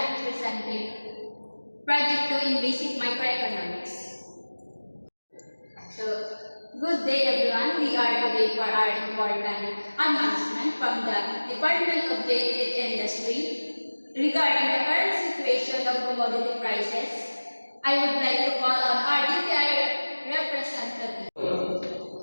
be presenting Project 2 in Basic Microeconomics. So, good day everyone. We are today for our important announcement from the Department of Trade and Industry regarding the current situation of commodity prices. I would like to call on our DTI representative.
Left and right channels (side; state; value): both; inverted; correlation -1.00